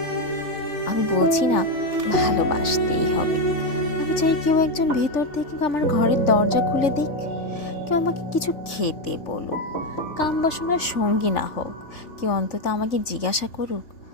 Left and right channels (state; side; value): late; right; 3.5 ms